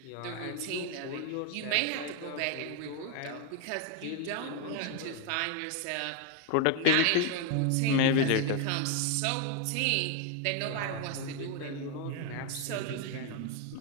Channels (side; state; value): both; different; correlation 0.01